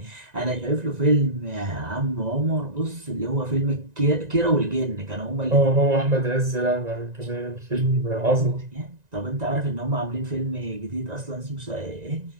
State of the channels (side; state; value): left; late; 1.9 ms